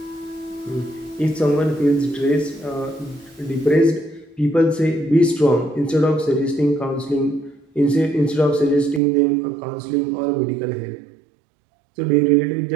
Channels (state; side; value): drops out; left; at 9.0 s